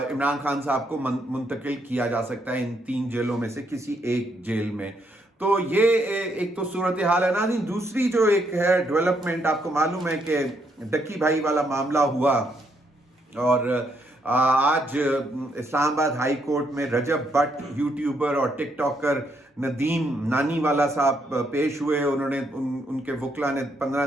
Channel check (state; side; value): normal; both; correlation 0.75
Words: इमरान खान साहब को मुंतकिल किया जा सकता है इन 3 जेलों में से किसी एक जेल में। तो ये एक तो सूरत हाल है ना। दूसरी जो एक है डेवलपमेंट, आपको मालूम है कि डक्की भाई वाला मामला हुआ और आज इस्लामाबाद हाई कोर्ट में रजब भट्ट यूट्यूबर और टिकटॉकर नदीम नानीवाला साहब पेश हुए। उन्होंने उनके वकला ने 15